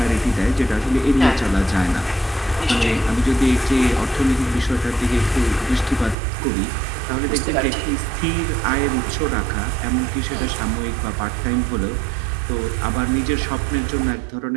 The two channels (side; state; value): left; drops out; at 6.2 s